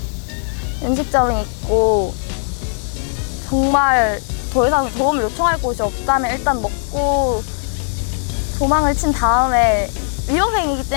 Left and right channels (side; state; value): right; silent; digital silence